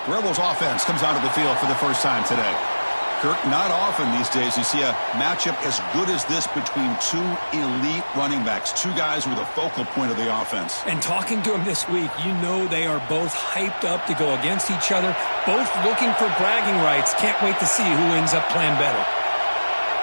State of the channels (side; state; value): both; inverted; correlation -1.00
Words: The Rebels offense comes onto the field for the first time today. Kirk, not often these days you see a matchup as good as this between two elite running backs, two guys who are the focal point of the offense. And talking to them this week, you know they are both hyped up to go against each other, both looking for bragging rights. Can't wait to see who ends up playing better.